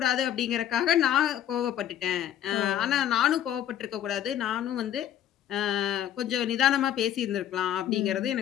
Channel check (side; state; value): right; quieter; 10.8 dB